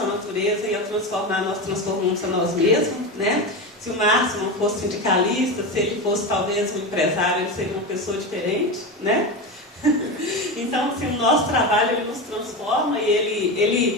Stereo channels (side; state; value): both; normal; correlation 0.20